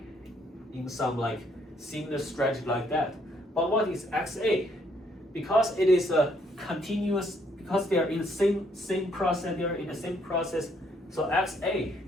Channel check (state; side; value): normal; both; correlation 0.69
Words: in some like similar strategy like that. But what is xa? Because it is a continuous, because they are in the same process, they are in the same process. So xa